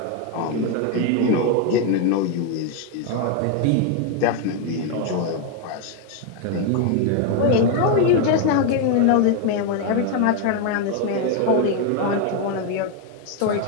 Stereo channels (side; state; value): both; different; correlation 0.01